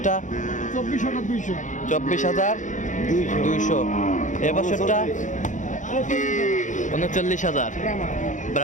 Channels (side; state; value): right; late; 0.36 ms